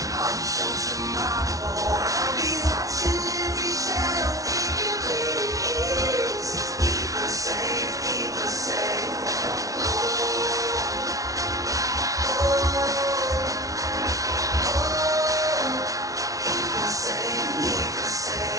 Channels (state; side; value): late; left; 0.17 ms